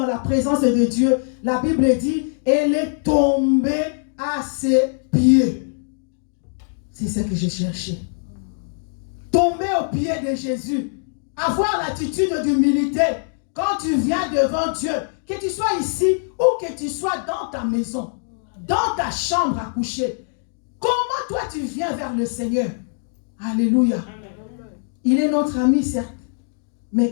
la présence de Dieu. La Bible dit, elle est tombée à ses pieds. C'est ce que j'ai cherché. Tomber aux pieds de Jésus. Avoir l'attitude d'humilité. Quand tu viens devant Dieu, que tu sois ici ou que tu sois dans ta maison, dans ta chambre à coucher, comment toi tu viens vers le Seigneur? Alléluia. Il est notre ami, certes,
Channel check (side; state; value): right; silent; digital silence